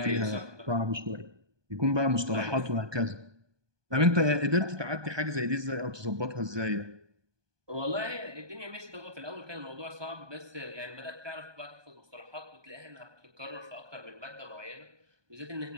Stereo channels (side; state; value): left; late; 1.2 ms